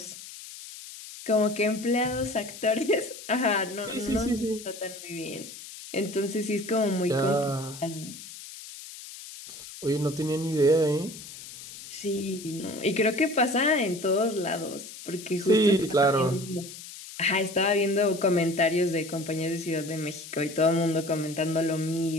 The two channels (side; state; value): left; noise; hiss, 14 dB below the sound